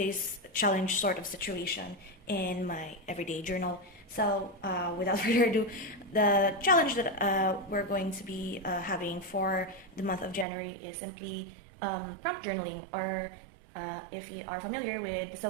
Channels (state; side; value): drops out; left; at 10.5 s